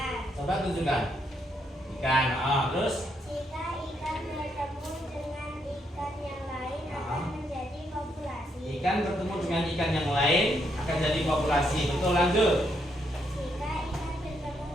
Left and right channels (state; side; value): normal; both; correlation 0.76